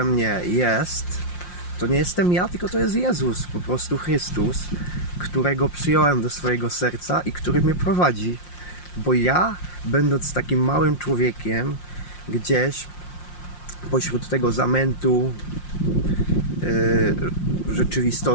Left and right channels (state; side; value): late; right; 5.7 ms